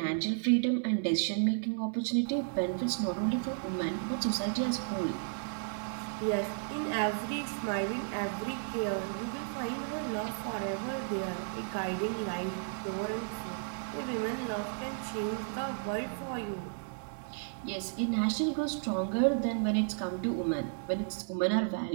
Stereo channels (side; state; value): left; silent; digital silence